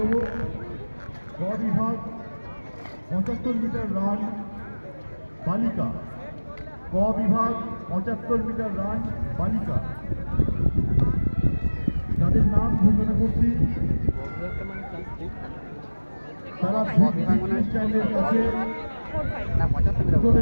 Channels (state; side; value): inverted; both; correlation -1.00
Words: গ বিভাগ 75 মিটার রান বালিকা। ক বিভাগ 75 মিটার রান বালিকা। যাদের নাম ঘোষণা করছি তারা চ্যানেলের কাছে চলে